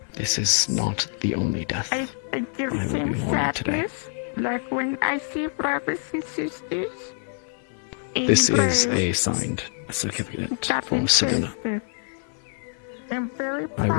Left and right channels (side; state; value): right; silent; 61 dB below the other